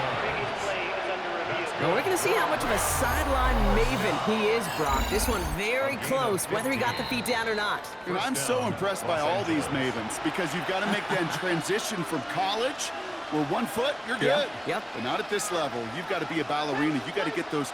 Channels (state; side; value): identical; both; correlation 1.00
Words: Now we're going to see how much of a sideline maven he is, Brock. This one very close, whether he got the feet down or not. And I'm so impressed by all these mavens because you've got to make that transition from college where 1 foot, you're good. Yep. But not at this level. You've got to be a ballerina. You've got to get those